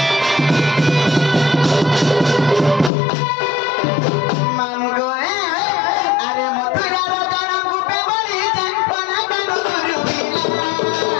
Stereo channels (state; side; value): drops out; right; at 2.9 s